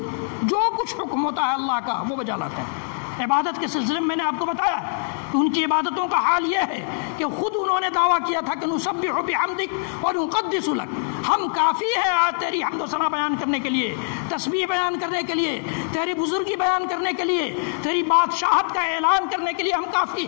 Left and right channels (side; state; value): right; silent; digital silence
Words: جو کچھ حکم ہوتا ہے اللہ کا وہ بجا لاتے ہیں. عبادت کے سلسلے میں میں نے آپ کو بتایا کہ ان کی عبادتوں کا حال یہ ہے کہ خود انہوں نے دعویٰ کیا تھا کہ نسبح بحمدک ونقدس لک، ہم کافی ہے آج تیری حمد و ثنا بیان کرنے کے لیے، تسبیح بیان کرنے کے لیے، تیری بزرگی بیان کرنے کے لیے، تیری بادشاہت کا اعلان کرنے کے لیے ہم کافی